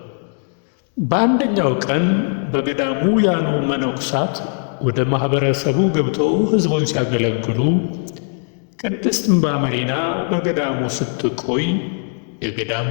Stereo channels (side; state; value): right; silent; 56 dB below the other